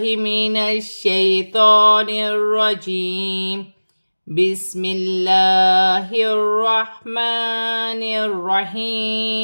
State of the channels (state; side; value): inverted; both; correlation -1.00